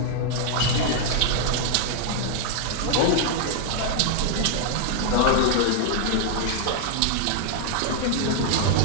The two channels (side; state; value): both; different; correlation 0.00